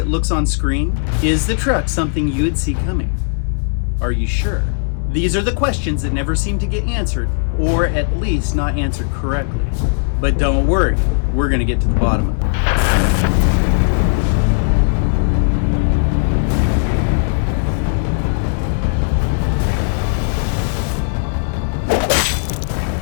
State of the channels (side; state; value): right; silent; 68 dB below the other